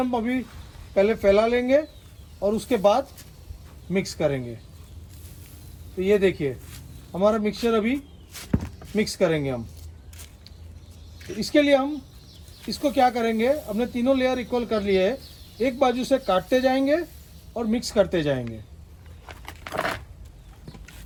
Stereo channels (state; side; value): identical; both; correlation 1.00